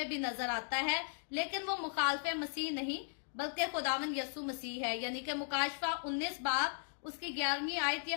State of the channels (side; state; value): right; silent; digital silence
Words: भी नजर आता है, लेकिन वो मुखालफे मसीह नहीं बल्कि खुदावंद यीशु मसीह है। यानी कि मुकाशवा 19 बाब उसकी 11वीं आयत ये